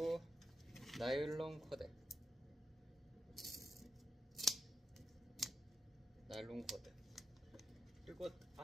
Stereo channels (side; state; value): both; normal; correlation 0.84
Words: 나일론 코드, 나일론 코드. 그리고